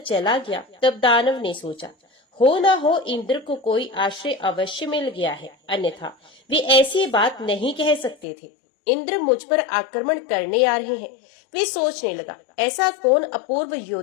गया, तब दानव ने सोचा, हो न हो इंद्र को कोई आश्रय अवश्य मिल गया है, अन्यथा वे ऐसी बात नहीं कह सकते थे। इंद्र मुझ पर आक्रमण करने आ रहे हैं। वे सोचने लगा, ऐसा कौन अपूर्व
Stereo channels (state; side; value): drops out; right; at 8.2 s